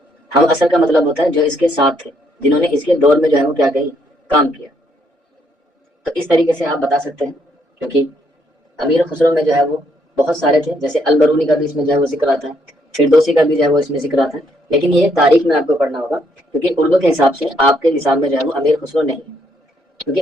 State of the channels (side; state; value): both; normal; correlation 0.72